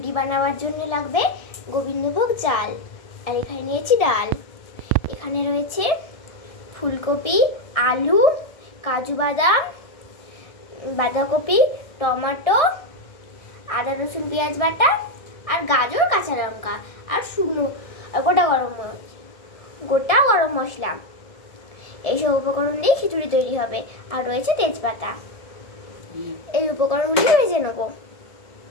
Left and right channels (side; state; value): right; late; 1.6 ms